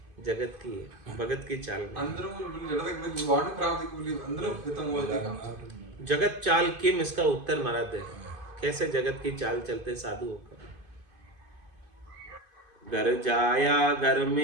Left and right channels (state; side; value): late; left; 2.5 ms